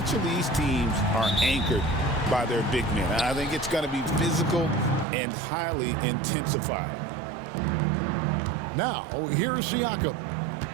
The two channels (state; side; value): drops out; left; at 5.1 s